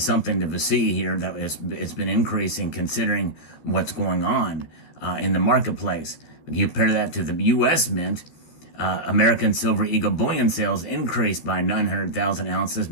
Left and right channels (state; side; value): late; right; 13 ms